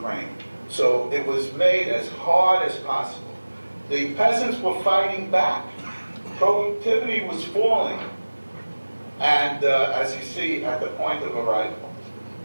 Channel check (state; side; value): inverted; both; correlation -1.00